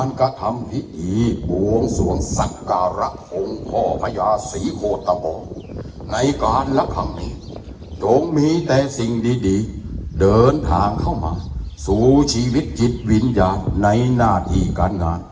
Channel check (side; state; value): both; identical; correlation 1.00